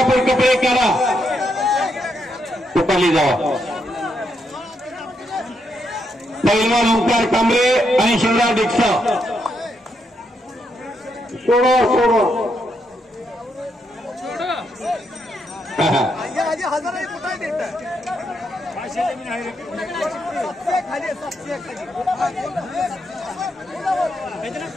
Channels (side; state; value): both; normal; correlation 0.79